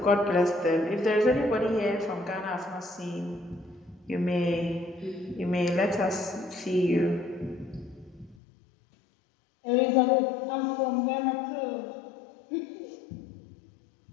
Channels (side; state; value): right; drops out; at 8.3 s